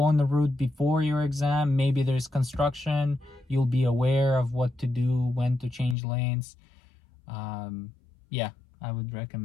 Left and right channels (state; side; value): drops out; right; at 6.0 s